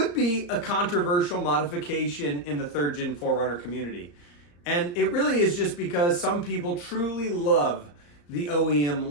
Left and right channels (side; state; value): right; late; 34 ms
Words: be a controversial modification in the third gen 4Runner community. And it really is just because some people truly love the OEM